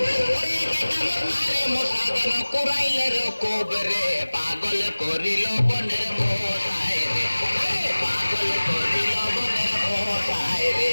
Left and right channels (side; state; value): both; inverted; correlation -1.00